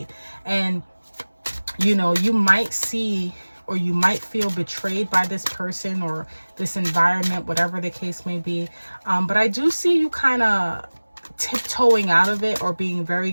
And, you know, you might see or you might feel betrayed by this person or this environment, whatever the case may be. But I do see you kind of tiptoeing out of it or being very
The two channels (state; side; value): inverted; both; correlation -1.00